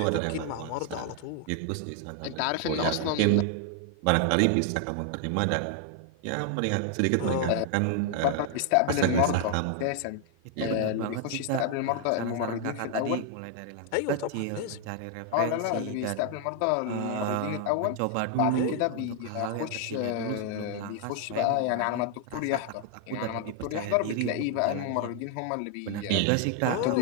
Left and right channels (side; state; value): both; different; correlation 0.00